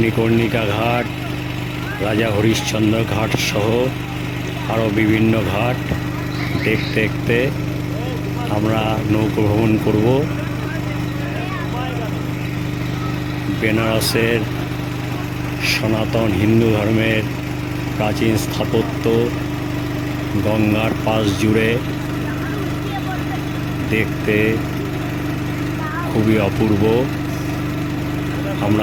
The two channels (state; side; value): identical; both; correlation 1.00